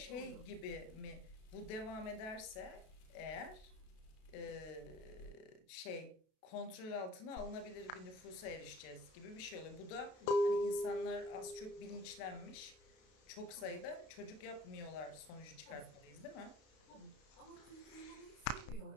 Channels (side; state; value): right; late; 32 ms